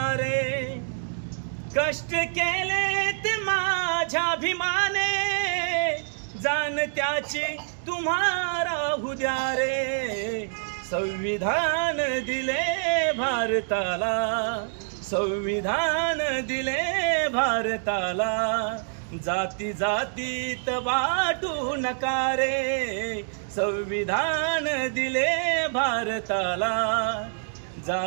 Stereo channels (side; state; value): left; silent; digital silence